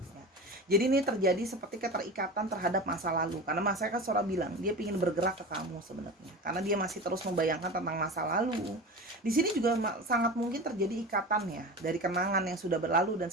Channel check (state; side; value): normal; both; correlation 0.31